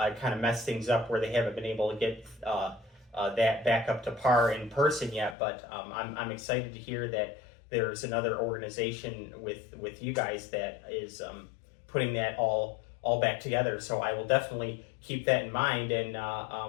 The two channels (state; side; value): drops out; right; at 5.4 s